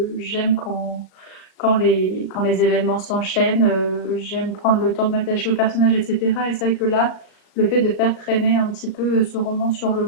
quand les événements s'enchaînent, j'aime prendre le temps de m'attacher au personnage, etc. Et c'est vrai que là, le fait de faire traîner un petit peu ce roman sur le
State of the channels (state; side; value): late; right; 37 ms